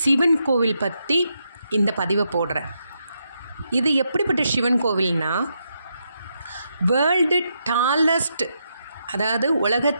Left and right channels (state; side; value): inverted; both; correlation -0.81